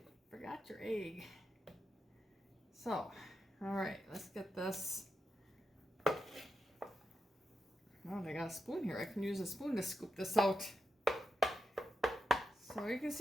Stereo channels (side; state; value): both; normal; correlation 0.87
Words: forgot your egg. So, all right, let's get this. Oh, I got a spoon here. I can use a spoon to scoop this out. So you can